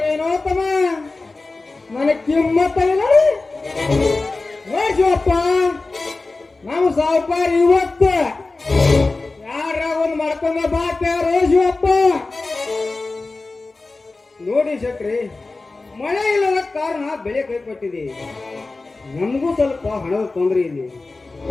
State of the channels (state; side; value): quieter; right; 3.5 dB